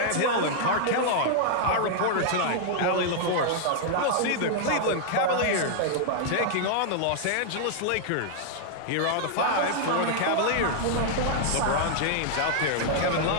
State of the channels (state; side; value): different; both; correlation -0.01